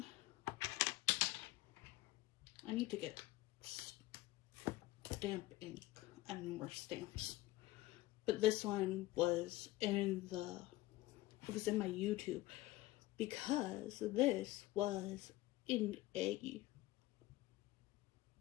I need to get stamp ink and more stamps. But this one was in my YouTube because this was in a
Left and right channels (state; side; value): quieter; right; 17.7 dB